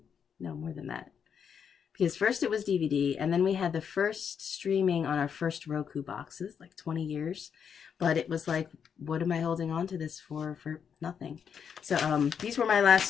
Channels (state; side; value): quieter; right; 7.3 dB